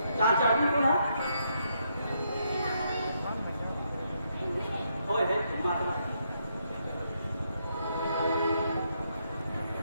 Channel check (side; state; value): both; inverted; correlation -0.77